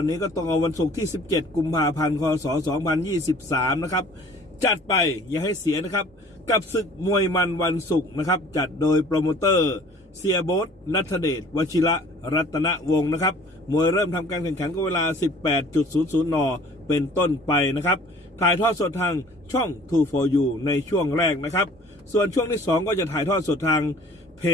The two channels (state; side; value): normal; both; correlation 0.51